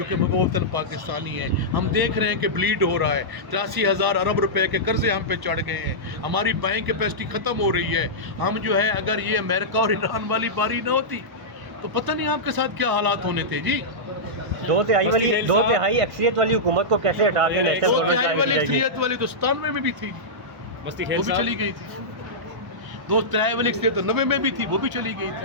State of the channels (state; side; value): late; left; 1.0 ms